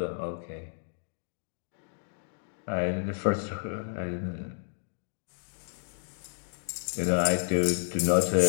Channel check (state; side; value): silent; right; digital silence